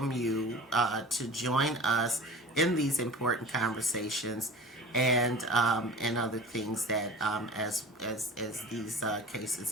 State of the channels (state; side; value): normal; both; correlation 0.38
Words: you to join us in these important conversations and other things that as these cases